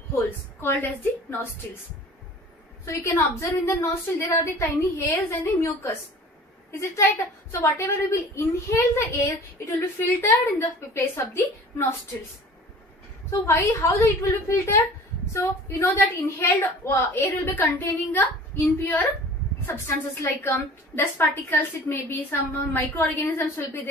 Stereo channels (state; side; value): normal; both; correlation 0.44